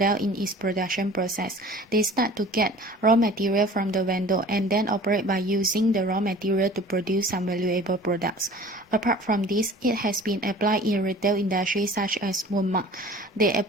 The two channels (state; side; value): normal; both; correlation 0.45